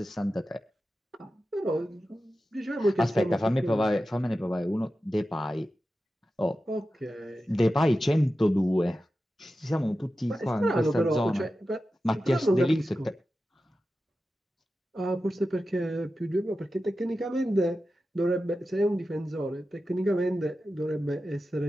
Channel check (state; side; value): normal; both; correlation 0.92